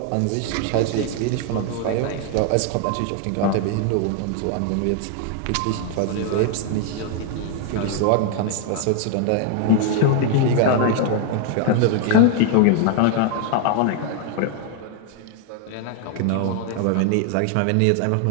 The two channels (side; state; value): both; different; correlation 0.00